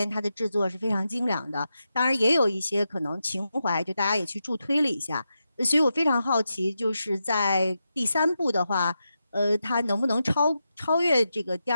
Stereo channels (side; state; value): both; inverted; correlation -0.88